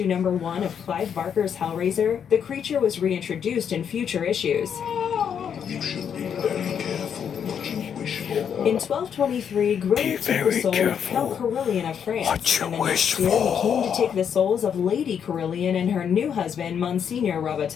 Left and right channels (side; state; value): right; quieter; 7.9 dB